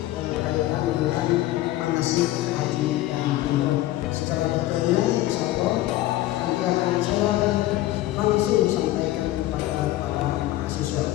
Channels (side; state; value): right; quieter; 15.7 dB